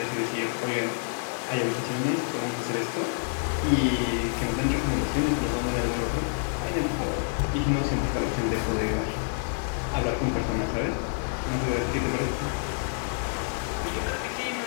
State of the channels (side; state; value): right; silent; 60 dB below the other